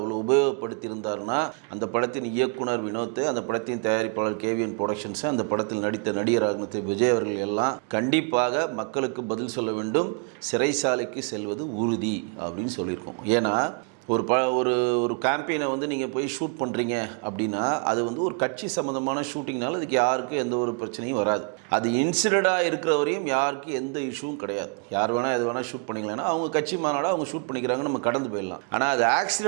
உபயோகப்படுத்தியிருந்தார்னா அந்த படத்தின் இயக்குனர் வினோத், அந்த படத்தின் தயாரிப்பாளர் கேவிஎன் ப்ரொடக்ஷன்ஸ், அந்த படத்தில் நடித்த நடிகராக விஜய் அவர்கள் எல்லாம் கண்டிப்பாக மக்களுக்கு பதில் சொல்ல வேண்டும், சிறைசாலைக்கு செல்வது உறுதி அப்படின்னு சொல்லியிருக்கோம். ஏன்னா ஒரு ஒரு கேம்பெயினை நீங்கள் போய் ஷூட் பண்ணுறீங்க அப்படின்னா அது ஒரு கட்சி சம்மந்தமான ஷூட்டிங்னால அதுக்கு யாருக்கும் எந்த ஒரு பிரச்சனையும் வராது. அது இன்சிடெண்ட்டாக இருக்கிற வரையும் யாருக்கும் எந்த இஷ்யூவும் கிடையாது. யார் வேணால் எது வேணால் ஷூட் பண்ணிக்கலாம்னா அவங்க கட்சி மாநாடாக அவங்க ஷூட் பண்ணிக்கிறாங்க, நம்ம கடந்து போயிடலாம். ஆனால் அது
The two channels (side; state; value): left; quieter; 37.7 dB